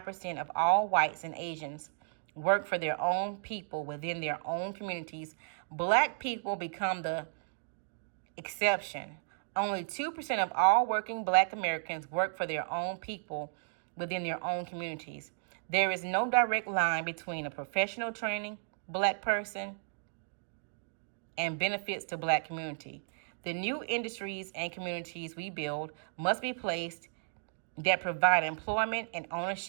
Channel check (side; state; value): left; silent; digital silence